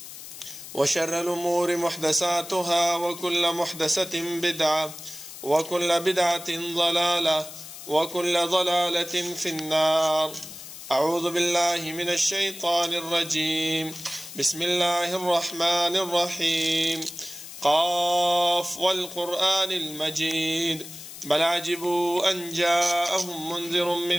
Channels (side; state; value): left; noise; hiss, 13 dB below the sound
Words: وشر الأمور محدثاتها وكل محدثة بدعة وكل بدعة ضلالة وكل ضلالة في النار. أعوذ بالله من الشيطان الرجيم. بسم الله الرحمن الرحيم. قاف والقرآن المجيد بل عجبوا أن جاءهم منذر